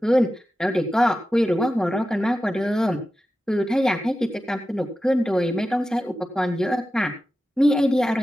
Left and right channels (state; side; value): normal; both; correlation 0.93